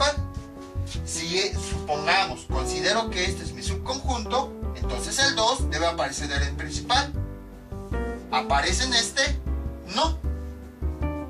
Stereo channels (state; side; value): identical; both; correlation 1.00